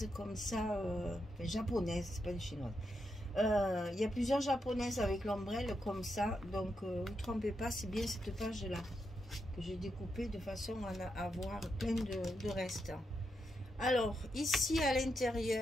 comme ça, japonaises, c'est pas des chinoises. Il y a plusieurs japonaises avec l'ombrelle comme ça, donc vous trompez pas, c'est bien cette page là que j'ai découpée de façon à avoir plein de restes. Alors ici à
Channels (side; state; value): both; normal; correlation 0.84